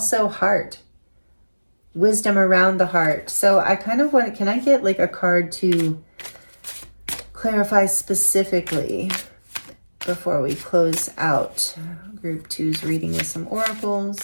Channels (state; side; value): inverted; both; correlation -1.00